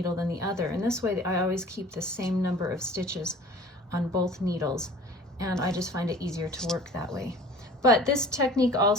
than the other, and this way I always keep the same number of stitches on both needles, and I just find it easier to work that way. But this technique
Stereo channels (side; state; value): both; normal; correlation 0.46